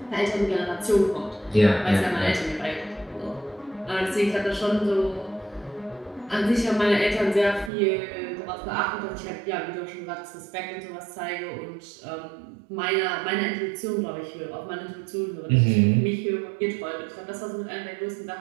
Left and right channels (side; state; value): left; drops out; at 7.7 s